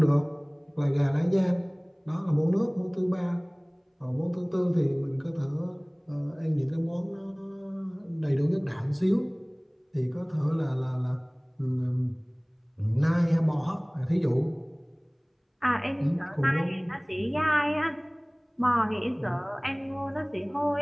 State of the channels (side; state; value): both; identical; correlation 1.00